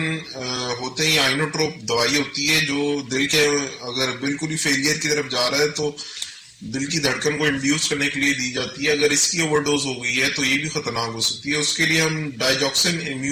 ہوتے ہیں یا آئنوٹروپ دوائی ہوتی ہے جو دل کے اگر بالکل ہی فیلئر کی طرف جا رہا ہے تو دل کی دھڑکن کو انڈیوس کرنے کے لیے دی جاتی ہے. اگر اس کی اوور ڈوز ہو گئی ہے تو یہ بھی خطرناک ہو سکتی ہے. اس کے لیے ہم ڈائیجوکسن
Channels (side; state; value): both; identical; correlation 1.00